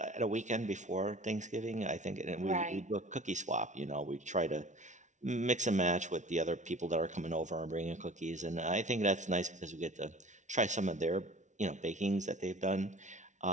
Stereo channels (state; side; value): late; left; 0.36 ms